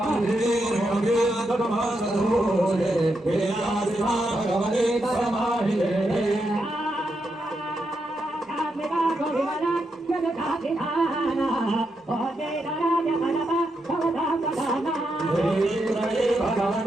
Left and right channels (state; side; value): normal; both; correlation 0.83